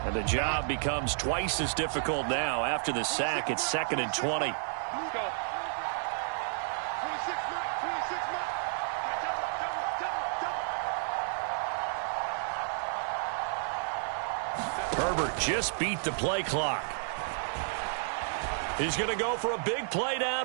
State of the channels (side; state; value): left; silent; digital silence